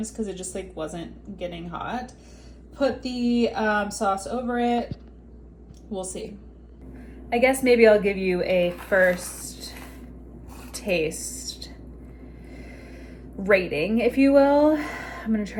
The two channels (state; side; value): identical; both; correlation 1.00